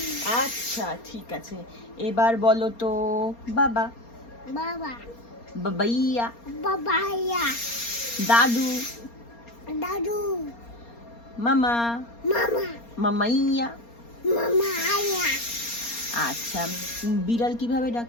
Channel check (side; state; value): right; late; 4.3 ms